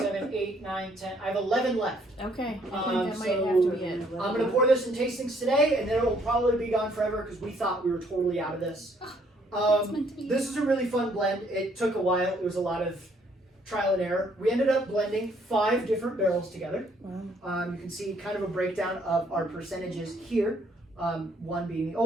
8, 9, 10. I have 11 left. Okay, I Um, think that might so have to be it. I'm gonna pour this in tastings today, and then it'll probably be gone forever because we thought we were totally out of this. It's meant to be. This is a really fun blend. It took a while. It was a lot of trial and error. We ended up blending 5 different barrels together. You can see kind of a breakdown of our percentages here. 1 being the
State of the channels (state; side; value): normal; both; correlation 0.66